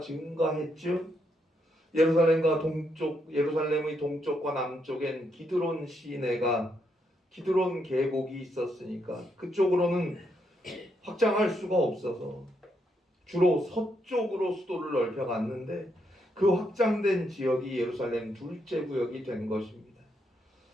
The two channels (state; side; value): normal; both; correlation 0.78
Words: 증가했죠. 예루살렘의 동쪽과 남쪽엔 기드론 시내가, 기드론 계곡이 있었으니까 그쪽으로는 확장할 수가 없어서 주로 서쪽으로 수도를 넓혀갔는데 그 확장된 지역이 예루살렘 둘째 구역이 된 것입니다.